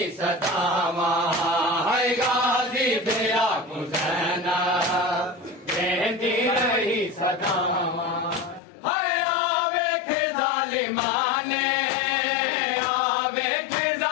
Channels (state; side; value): drops out; right; at 8.6 s